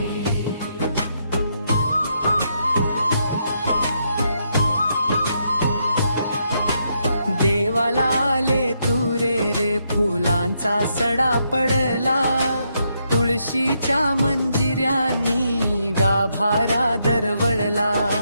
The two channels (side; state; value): both; inverted; correlation -0.78